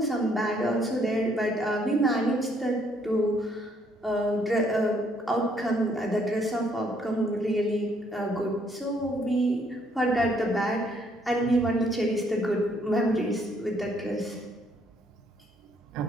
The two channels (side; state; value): both; normal; correlation 0.68